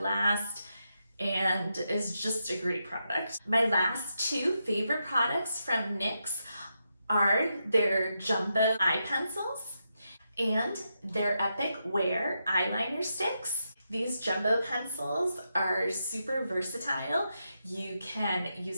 and is just a great product. My last two favorite products from NYX are their jumbo eye pencils and their Epic Wear eyeliner sticks. These jumbo pencils are super versatile. You can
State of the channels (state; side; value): inverted; both; correlation -0.85